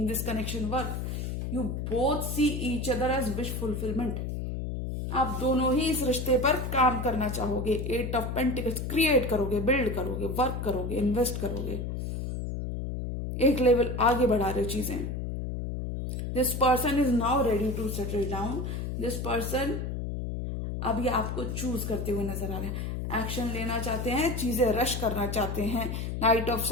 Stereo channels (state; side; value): noise; left; hum, 4 dB below the sound